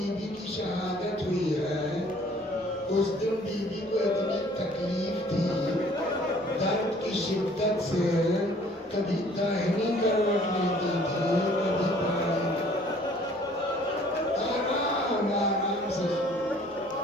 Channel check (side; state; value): both; normal; correlation 0.55